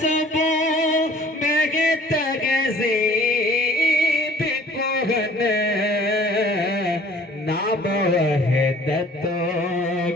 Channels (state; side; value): normal; both; correlation 0.52